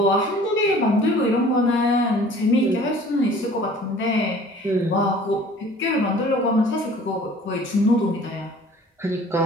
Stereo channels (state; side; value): normal; both; correlation 0.49